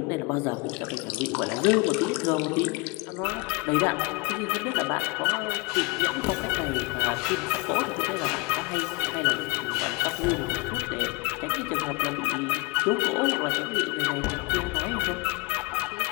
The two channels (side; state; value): right; quieter; 24.8 dB